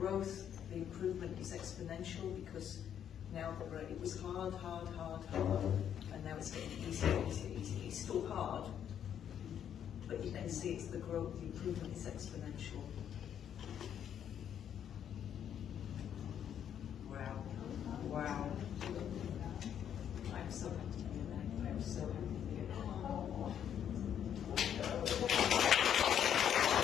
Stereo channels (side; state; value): right; quieter; 9.3 dB